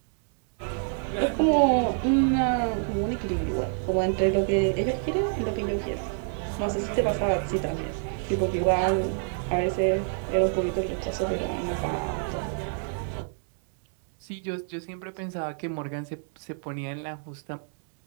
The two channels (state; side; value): silent; left; 60 dB below the other